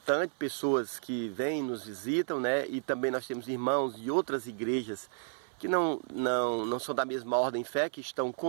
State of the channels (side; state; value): left; silent; 56 dB below the other